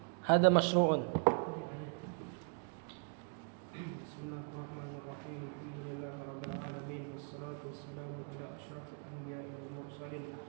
Hada masyru'un. Bismillahirrahmanirrahim. Alhamdulillahirabbil alamin wassalatu wassalamu ala asyrafil anbiya'i wal mursalin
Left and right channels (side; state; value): left; quieter; 39.2 dB